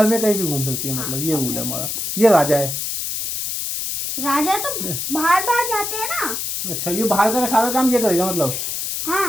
में कहीं भी घूम सकती है, मतलब ये रूल है हमारा। ये राजा है। राजा तो बाहर बाहर जाते हैं ना। अच्छा, ये बाहर का सारा काम ये करेगा मतलब।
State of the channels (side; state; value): left; noise; hiss, 3 dB below the sound